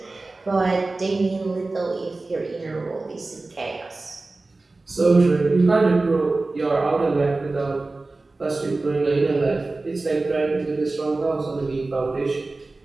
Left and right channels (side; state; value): left; quieter; 3.3 dB